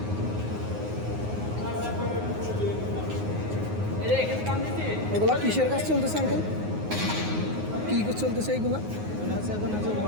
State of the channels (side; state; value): left; late; 9.5 ms